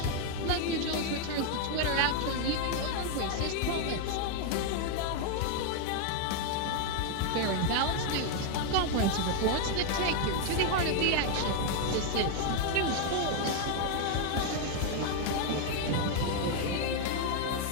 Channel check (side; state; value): both; different; correlation 0.01